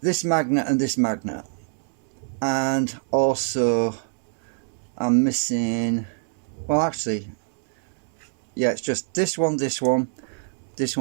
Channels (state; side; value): silent; left; 62 dB below the other